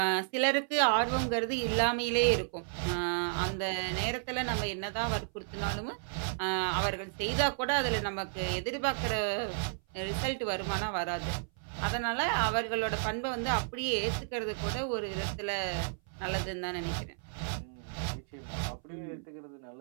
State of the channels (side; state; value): left; silent; 56 dB below the other